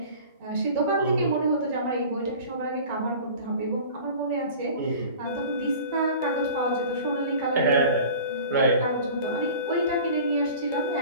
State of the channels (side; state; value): both; inverted; correlation -0.41